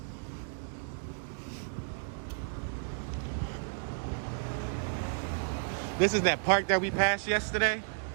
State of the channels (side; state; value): left; silent; digital silence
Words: This is that park that we passed yesterday.